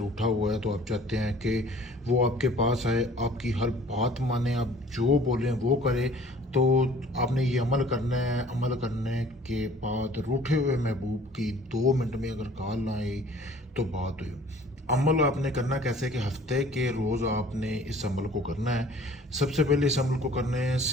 हुआ है तो आप चाहते हैं कि वो आपके पास आए, आपकी हर बात माने, आप जो बोलें वो करे, तो आपने ये अमल करना है। अमल करने के बाद रूठे हुए महबूब की 2 मिनट में अगर कॉल ना आई तो बात हुई। अमल आपने करना कैसे कि हफ्ते के रोज़ आपने इस अमल को करना है। सबसे पहले इस अमल को करने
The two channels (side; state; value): both; normal; correlation 0.51